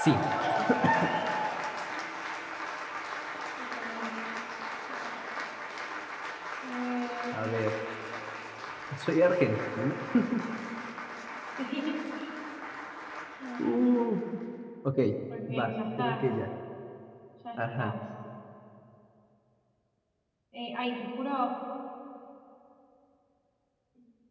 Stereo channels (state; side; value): identical; both; correlation 1.00